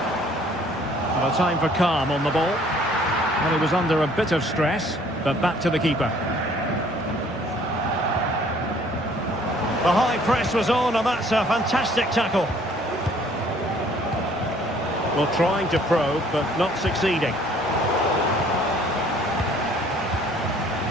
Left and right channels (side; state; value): both; normal; correlation 0.58